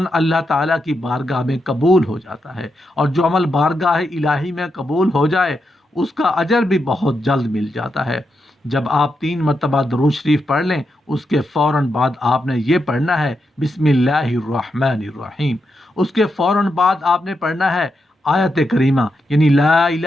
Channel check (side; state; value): both; normal; correlation 0.85